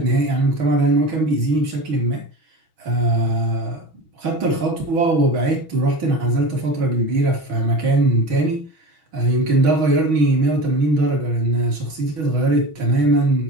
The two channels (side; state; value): left; late; 6.3 ms